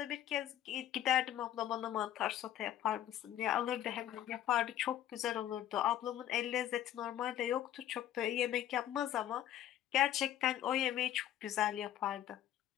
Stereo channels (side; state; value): right; quieter; 12.0 dB